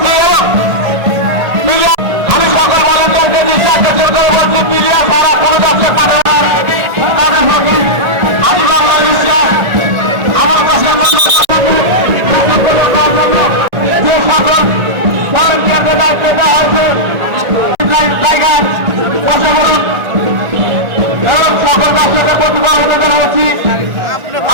আমি সকল ভলেন্টিয়ারকে নিঃশ্বাস করে বলছি মিডিয়া সারা কোনো দশের পাঠানোর আমি বাংলা বিশ্বাস আমার কাছে যে সকল ভলেন্টিয়ারদের দায়িত্ব দেওয়া হয়েছে জায়গায় বসে বলুন এবং সকল দর্শকের প্রতিভা অনুদান হচ্ছি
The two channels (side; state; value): left; late; 1.6 ms